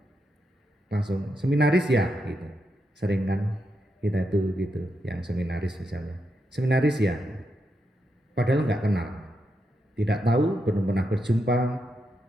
langsung seminaris ya gitu. Sering kan kita itu gitu, yang seminaris misalnya, seminaris ya, padahal nggak kenal, tidak tahu, belum pernah berjumpa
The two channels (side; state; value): both; normal; correlation 0.83